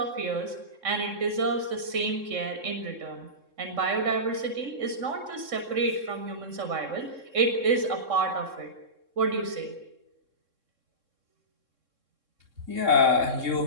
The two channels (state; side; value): late; left; 3.7 ms